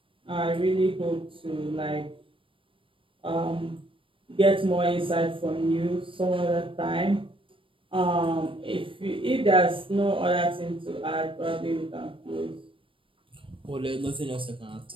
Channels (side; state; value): left; late; 0.25 ms